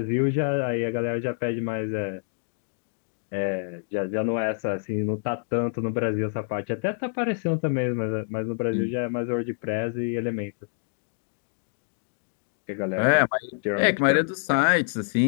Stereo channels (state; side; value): silent; right; digital silence